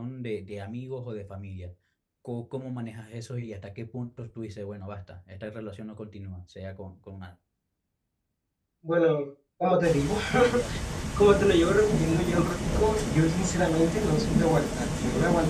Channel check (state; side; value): identical; both; correlation 1.00